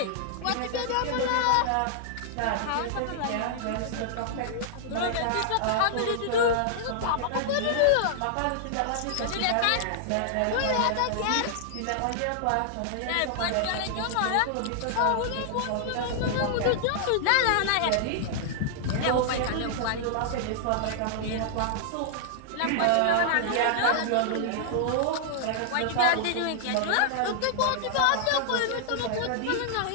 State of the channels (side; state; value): both; different; correlation -0.01